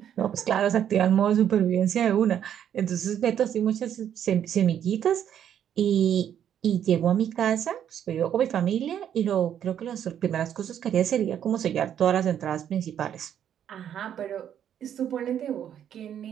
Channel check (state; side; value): quieter; left; 9.6 dB